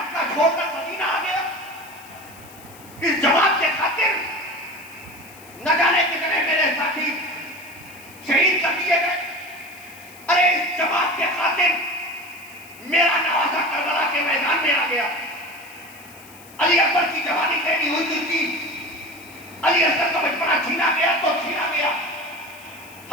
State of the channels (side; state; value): left; noise; hiss, 21 dB below the sound